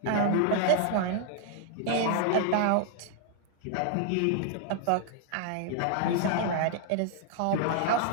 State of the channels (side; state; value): both; different; correlation 0.00